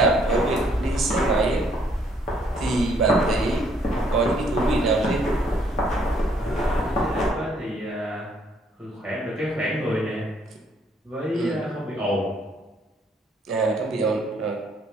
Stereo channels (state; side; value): normal; both; correlation 0.67